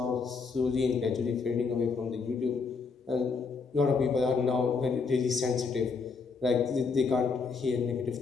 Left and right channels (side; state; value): right; quieter; 4.9 dB